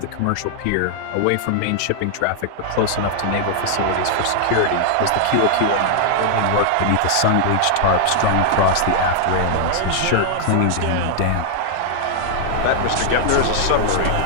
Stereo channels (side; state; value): both; different; correlation 0.00